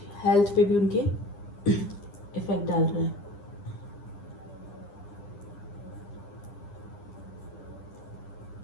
पे भी उनके इफेक्ट डाल रहा है।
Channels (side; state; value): right; late; 9.9 ms